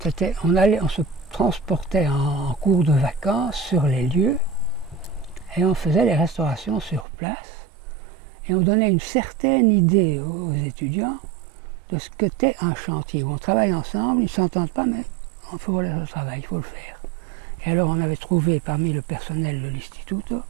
On se transportait en cours de vacances sur les lieux et on faisait les restaurations sur place et on donnait une certaine idée aux étudiants de ce qu'était un chantier, où on travaille ensemble, ils ne s'entendent pas, mais il faut le travail, il faut le faire. Et alors on avait trouvé parmi le personnel de l'Istituto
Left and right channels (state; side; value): drops out; left; at 7.1 s